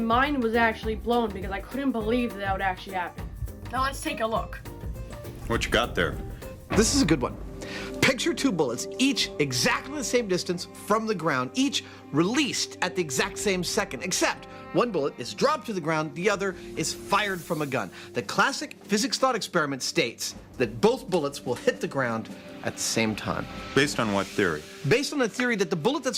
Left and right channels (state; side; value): identical; both; correlation 1.00